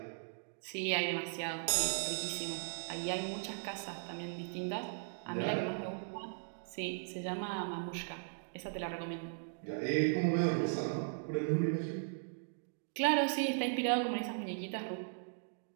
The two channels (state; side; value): silent; left; digital silence